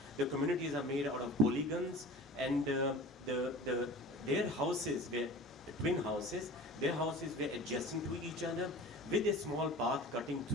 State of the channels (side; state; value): both; normal; correlation 0.39